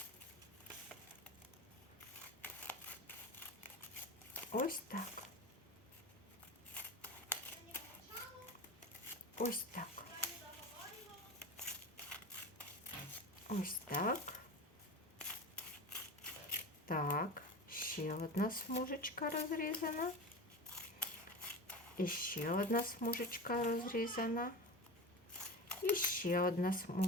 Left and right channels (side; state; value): both; normal; correlation 0.28